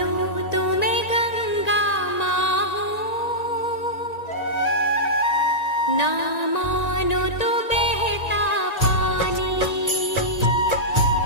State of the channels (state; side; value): late; right; 1.9 ms